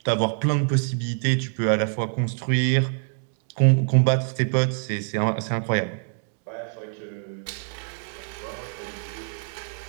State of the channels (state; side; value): silent; left; 62 dB below the other